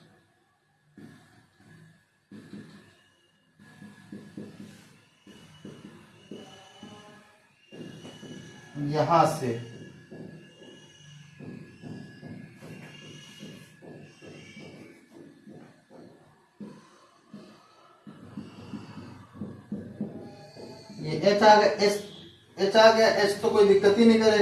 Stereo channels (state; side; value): identical; both; correlation 1.00